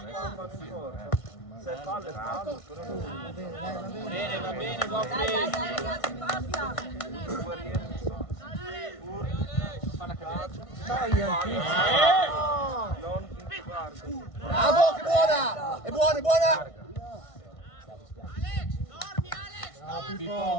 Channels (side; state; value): right; late; 1.5 ms